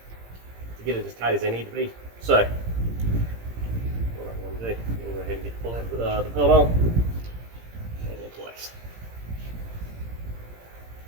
get it as tight as they need to be. So what I'm going to do, I'm going to go ahead and get the belt on and in place.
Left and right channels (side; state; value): left; late; 17 ms